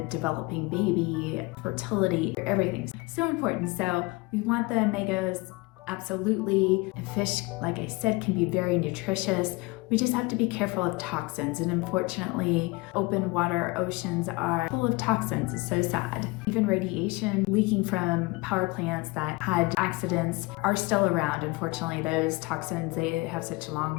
developing baby, fertility, everything's so important. So we want the omegas. Absolutely. And fish, like I said, can be very nutritious. We just have to be careful of toxins, and unfortunately, open water oceans are full of toxins. It's so sad. Even radiation leaking from power plants that had accidents are still around. Unfortunately, those toxins, they have such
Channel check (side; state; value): right; quieter; 24.1 dB